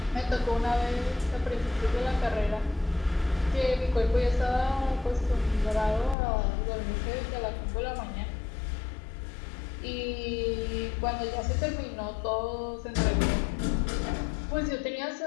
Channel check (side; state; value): right; drops out; at 6.2 s